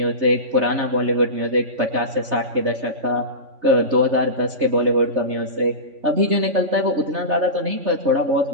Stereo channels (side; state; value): left; late; 3.5 ms